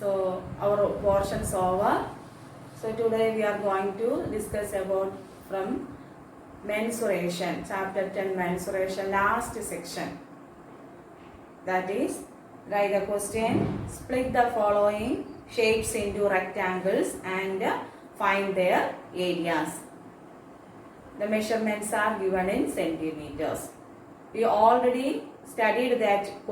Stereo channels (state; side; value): identical; both; correlation 1.00